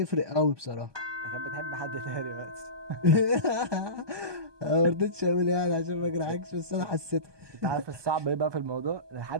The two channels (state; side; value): late; left; 1.2 ms